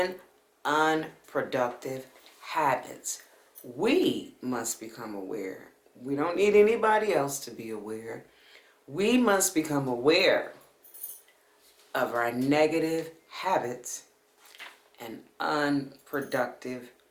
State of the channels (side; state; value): both; identical; correlation 1.00